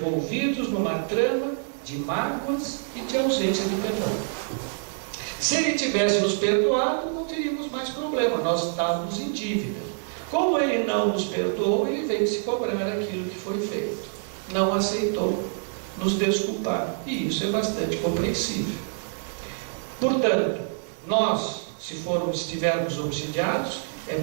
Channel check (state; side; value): silent; left; digital silence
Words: numa trama de mágoas e de ausência de perdão. Se ele tivesse nos perdoado, não teríamos mais problema, nós estávamos em dívida. Como ele não nos perdoou, ele veio se cobrar aquilo que foi feito. Não aceitou nos desculpar. E isso é bastante compreensível. Portanto, nós, se estivermos obsidiados, é